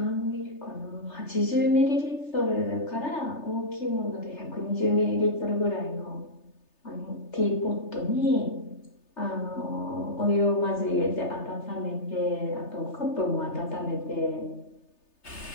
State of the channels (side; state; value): right; late; 3.3 ms